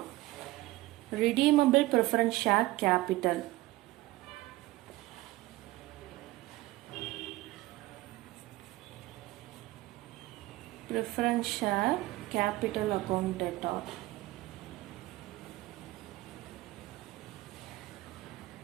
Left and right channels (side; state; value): left; quieter; 18.4 dB